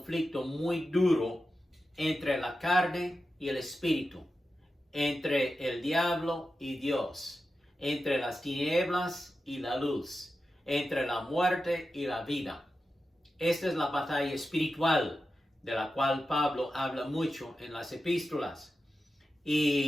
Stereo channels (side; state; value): both; normal; correlation 0.91